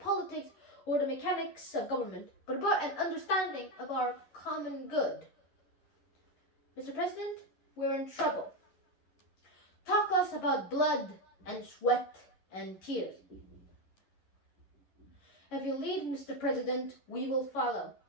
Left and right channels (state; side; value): late; right; 11 ms